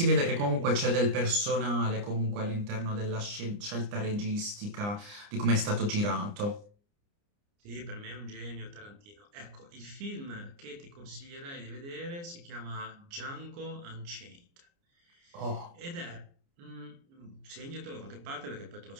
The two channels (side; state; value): left; late; 29 ms